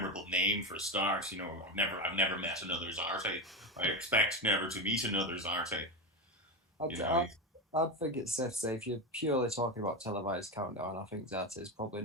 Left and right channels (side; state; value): both; normal; correlation 0.15